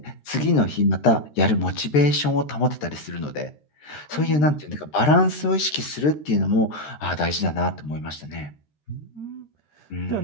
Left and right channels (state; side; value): late; right; 13 ms